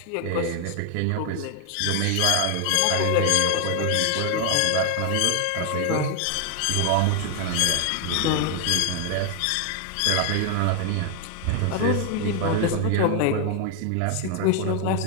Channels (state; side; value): different; both; correlation 0.00